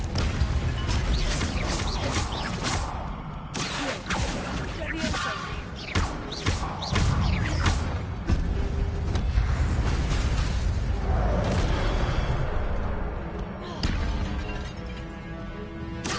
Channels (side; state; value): both; identical; correlation 1.00